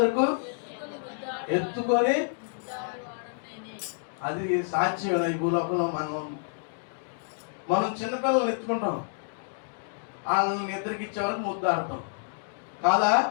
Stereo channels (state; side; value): silent; right; digital silence